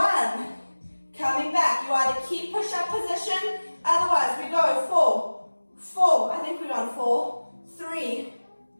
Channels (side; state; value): both; inverted; correlation -1.00